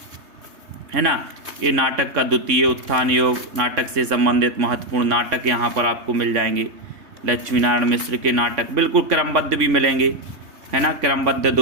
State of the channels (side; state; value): left; late; 3.5 ms